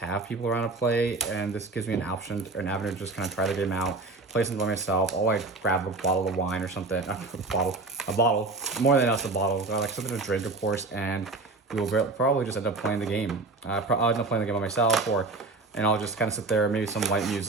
people around to play, and this gives me an option, an avenue to just kind of try the game out, play something by myself. I'll like grab a bottle of wine or something, a bottle, more than just a bottle, like something to drink, of course, and we will probably just end up playing the game. I'll end up playing the game by myself, and I'll just kind of sit there, maybe some light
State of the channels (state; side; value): quieter; left; 3.5 dB